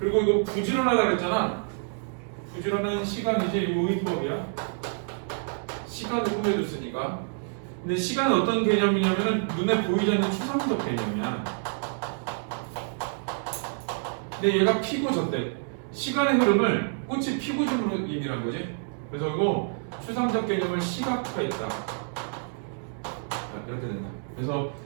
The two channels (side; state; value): left; silent; 60 dB below the other